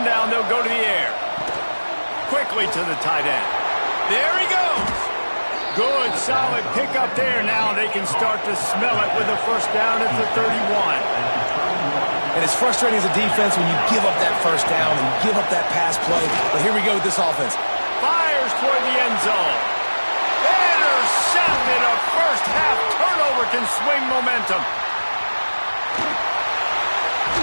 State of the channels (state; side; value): inverted; both; correlation -1.00